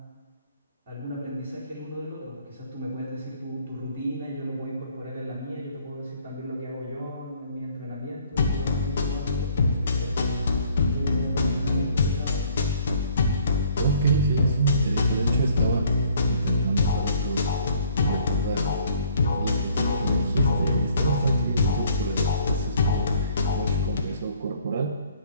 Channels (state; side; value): inverted; both; correlation -0.59